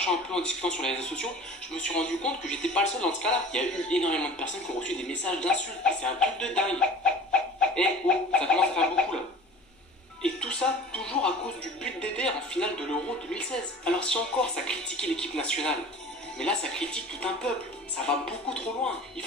un peu, en discutant sur les réseaux sociaux, je me suis rendu compte que j'étais pas le seul dans ce cas-là. Il y a eu énormément de personnes qui ont reçu des messages d'insultes. Et c'est un truc de dingue. Eh oh, ça commence à faire beaucoup là. Et tout ça, toujours à cause du but d'Eder en finale de l'Euro 2016. Alors si encore ça critiquait l'équipe nationale, mais là ça critique tout un peuple, ça va beaucoup trop loin. Il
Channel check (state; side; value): normal; both; correlation 0.42